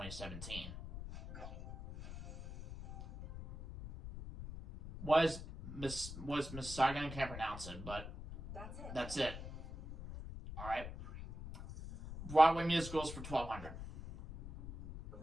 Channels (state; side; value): noise; left; rumble, 10 dB below the sound